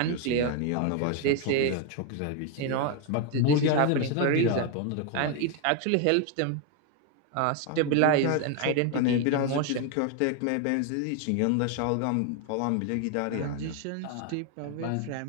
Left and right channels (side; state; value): both; different; correlation 0.01